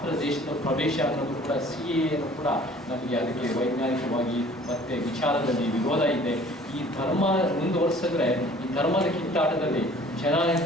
ದೇಶದ ಪ್ರವೇಶ ಅನ್ನೋದು ಕೂಡ CAನು ಕೂಡ ನಮಗೆ ಅದಕ್ಕೆ ವೈಜ್ಞಾನಿಕವಾಗಿ ಮತ್ತು ವಿಚಾರದಲ್ಲಿ ವಿರೋಧ ಇದೆ. ಈ ಧರ್ಮ ಮುಂದುವರಿಸಿದ್ರೆ ಈ ಧರ್ಮದ ಕಿತ್ತಾಟದಲ್ಲಿ ಜನ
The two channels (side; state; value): both; normal; correlation 0.51